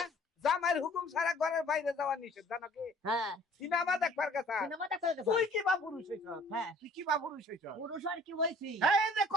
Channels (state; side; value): normal; both; correlation 0.54